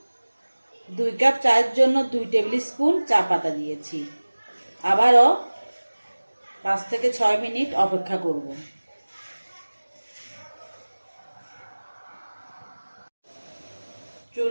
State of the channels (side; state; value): both; inverted; correlation -1.00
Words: 2 কাপ চায়ের জন্য 2 টেবিল স্পুন চা পাতা দিয়েছি। আবারও 5 থেকে 6 মিনিট অপেক্ষা করব।